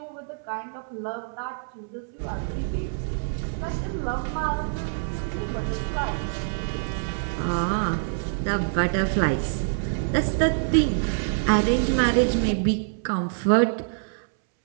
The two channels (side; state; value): left; silent; 61 dB below the other